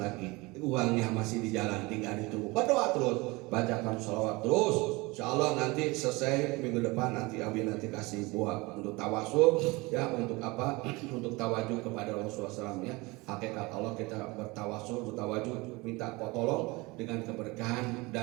lagi, uangnya masih di jalan, tinggal ditunggu. Berdoa terus, bacakan sholawat terus. Insya Allah nanti selesai minggu depan, nanti Abi nanti kasih buah untuk tawasul, ya, untuk apa? Untuk tawajuh kepada Rasulullah SAW, ya. Hakikat Allah kita bertawasul, bertawajuh, minta tolong dengan keberkahan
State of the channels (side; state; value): left; quieter; 23.9 dB